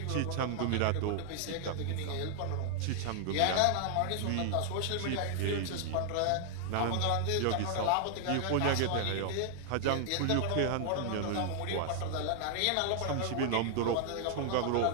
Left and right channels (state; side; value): different; both; correlation 0.00